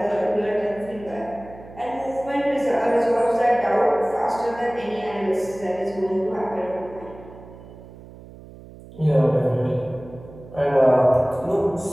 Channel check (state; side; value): noise; right; hum, 18 dB below the sound